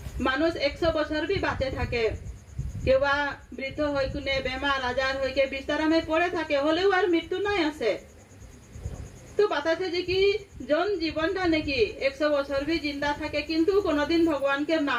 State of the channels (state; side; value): identical; both; correlation 1.00